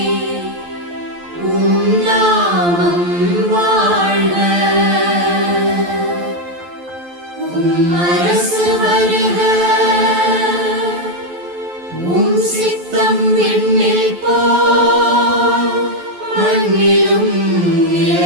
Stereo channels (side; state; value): left; late; 11 ms